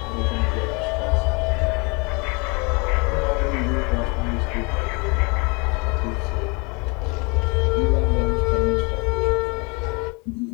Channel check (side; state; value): right; quieter; 30.4 dB